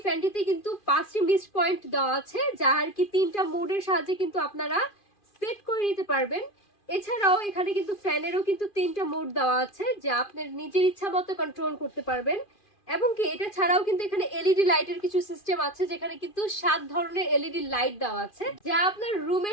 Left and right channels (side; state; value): right; late; 2.4 ms